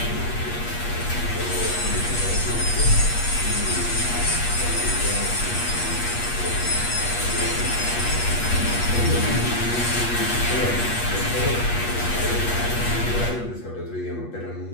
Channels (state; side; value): late; right; 8.4 ms